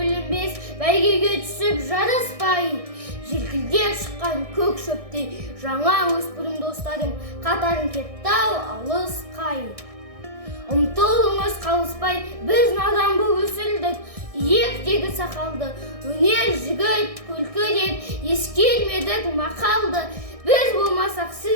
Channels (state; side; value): late; left; 1.6 ms